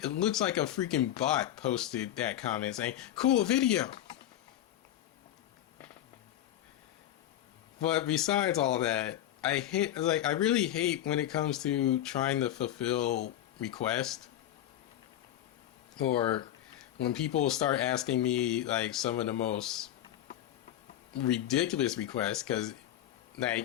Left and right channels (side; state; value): right; quieter; 12.3 dB